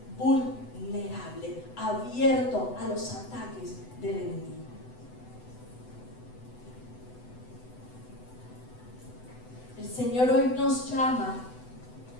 vulnerable, abierto a los ataques del enemigo. El Señor hoy nos llama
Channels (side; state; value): right; late; 8.0 ms